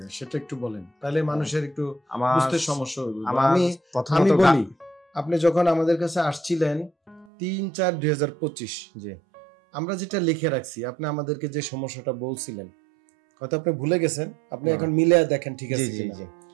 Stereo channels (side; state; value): left; drops out; at 7.2 s